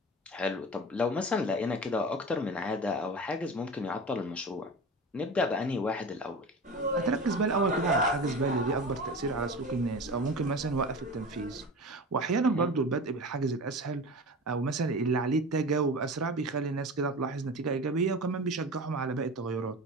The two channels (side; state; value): both; normal; correlation 0.32